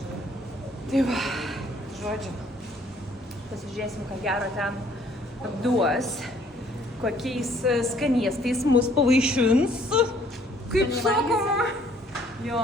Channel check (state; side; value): normal; both; correlation 0.61